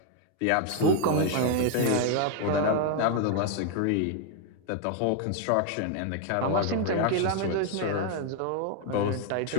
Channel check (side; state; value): both; different; correlation 0.01